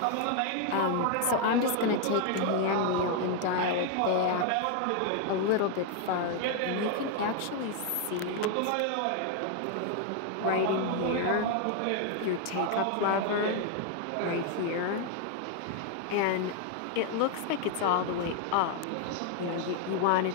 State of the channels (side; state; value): both; different; correlation 0.00